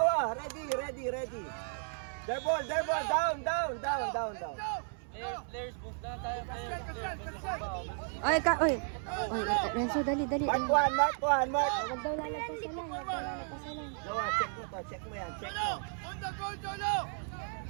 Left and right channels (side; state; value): left; silent; 55 dB below the other